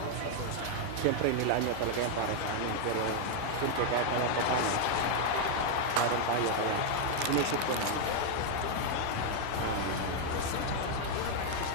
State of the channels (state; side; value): different; both; correlation 0.00